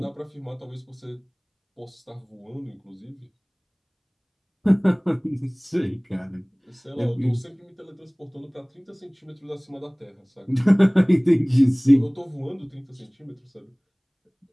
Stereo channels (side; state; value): both; identical; correlation 1.00